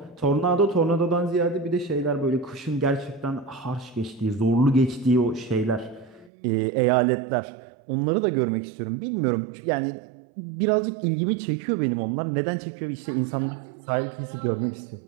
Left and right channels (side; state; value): left; drops out; at 6.3 s